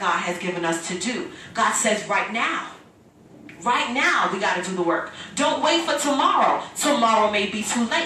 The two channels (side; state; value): both; identical; correlation 1.00